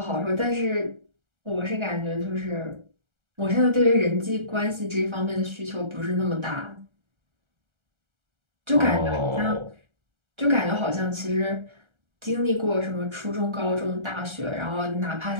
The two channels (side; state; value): left; late; 1.3 ms